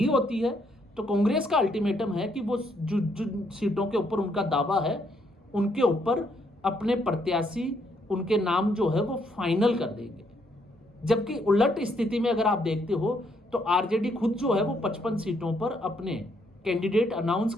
होती है, तो कांग्रेस का अल्टीमेटम है कि वो जो सीटों के ऊपर उनका दावा है उनके ऊपर अपने प्रत्याशी, उनके नाम जो है वो फाइनल कर देंगे। जबकि उलट स्थिति में अगर आप देखते हो तो आरजेडी खुद जो है वो 55 सीटों पर अपने कैंडिडेट अनाउंस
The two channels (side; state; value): both; normal; correlation 0.72